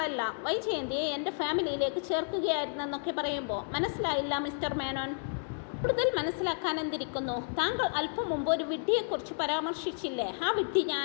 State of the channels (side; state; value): right; silent; digital silence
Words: വൈജയന്തിയെ എൻ്റെ ഫാമിലിയിലേക്ക് ചേർക്കുകയായിരുന്നെന്നൊക്കെ പറയുമ്പോൾ, മനസ്സിലായില്ല മിസ്റ്റർ മേനോൻ. കൂടുതൽ മനസ്സിലാക്കാൻ എന്തിരിക്കുന്നു? താങ്കൾ അല്പം മുമ്പ് ഒരു വിഡ്ഢിയെക്കുറിച്ച് പരാമർശിച്ചില്ലേ? ആ വിഡ്ഢി